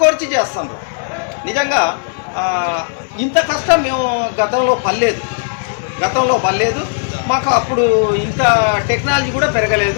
కోర్చి చేస్తున్నారు. నిజంగా ఇంత కష్టం మేము గతంలో పడలేదు. మాకు అప్పుడు ఇంత టెక్నాలజీ కూడా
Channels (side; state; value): right; silent; digital silence